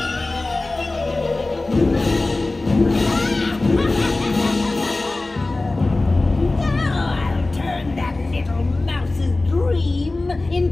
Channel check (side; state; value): right; quieter; 3.1 dB